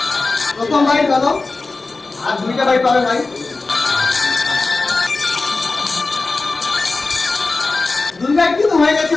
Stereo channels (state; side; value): quieter; right; 3.6 dB